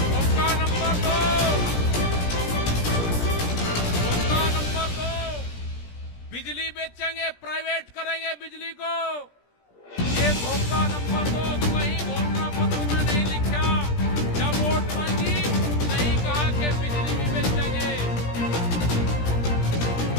मौका नंबर 2 बिजली बेचेंगे, प्राइवेट करेंगे बिजली को। ये धोखा नंबर 2 कहीं घोषणा पत्र में नहीं लिखा। जब वोट मांगी नहीं कहा कि बिजली भी बेचेंगे।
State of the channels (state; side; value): late; right; 17 ms